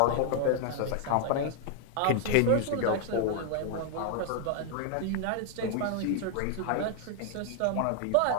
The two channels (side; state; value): both; different; correlation 0.00